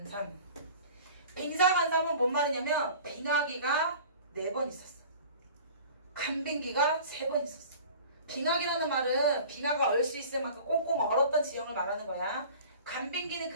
빙사간삼은 뭔 말이냐면 빙하기가 4번 있었어. 간빙기가 3번 있었어. 빙하기라는 말은 빙하가 얼 수 있을 만큼 꽁꽁 얼었던 지형을 말하는 거야. 간빙기는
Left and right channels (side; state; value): both; inverted; correlation -0.43